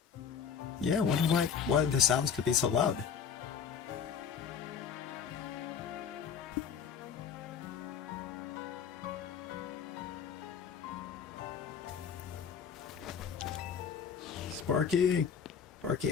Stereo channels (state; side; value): quieter; right; 7.1 dB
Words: Yeah, I wonder why the sounds could be so loud. Sparky! Sparky,